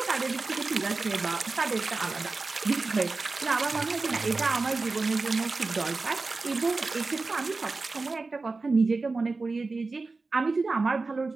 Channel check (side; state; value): left; quieter; 3.8 dB